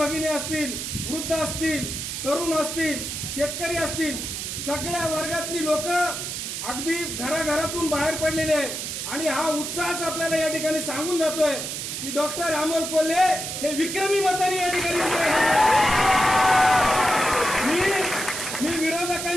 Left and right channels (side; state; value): right; noise; hiss, 5 dB below the sound